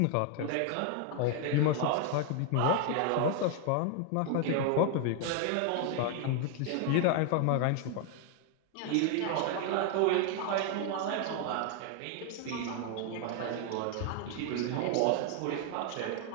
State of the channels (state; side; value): different; both; correlation 0.00